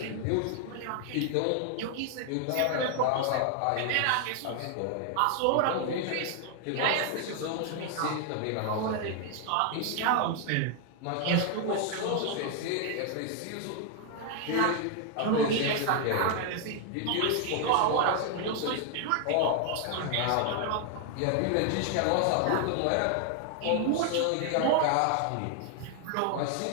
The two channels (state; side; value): different; both; correlation 0.00